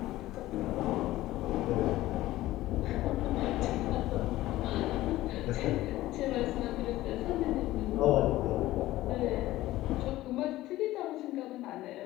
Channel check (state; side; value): quieter; right; 16.2 dB